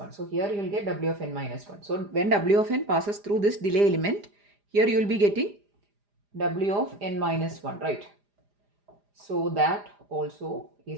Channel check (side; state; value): left; late; 4.9 ms